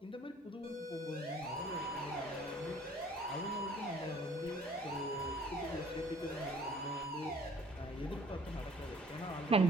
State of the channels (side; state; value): both; normal; correlation 0.54